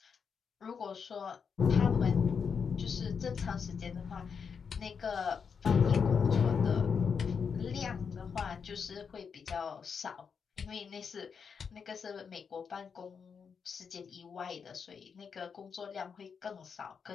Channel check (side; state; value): right; quieter; 6.2 dB